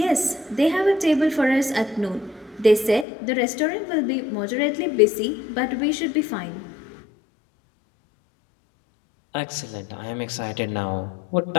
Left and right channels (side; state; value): right; drops out; at 3.1 s